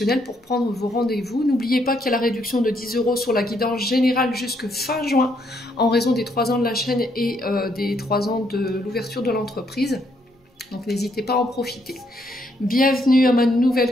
pour prendre vos rendez-vous. N'oubliez pas qu'il y a la réduction de 10 € sur la guidance générale jusque fin juin en raison des 3 ans de la chaîne et des 3 ans de l'ouverture de l'entreprise. Donc n'hésitez pas à en profiter. Bienvenue à ma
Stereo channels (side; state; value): both; normal; correlation 0.73